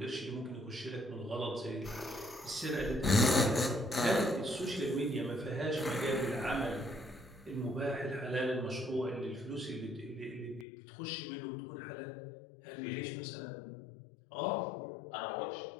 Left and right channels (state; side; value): drops out; right; at 10.7 s